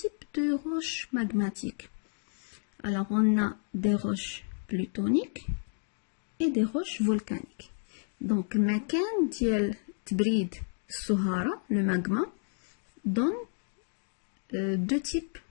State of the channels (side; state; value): right; silent; 57 dB below the other